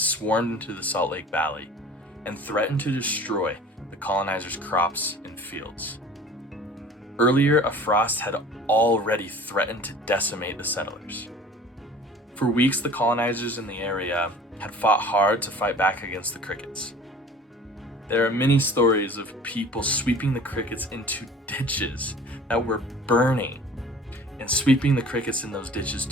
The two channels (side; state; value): both; normal; correlation 0.45